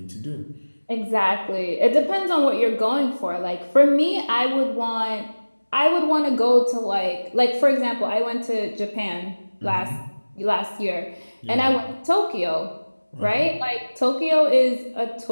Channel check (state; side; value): inverted; both; correlation -1.00